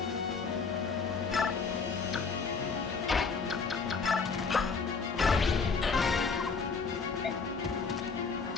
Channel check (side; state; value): right; quieter; 5.0 dB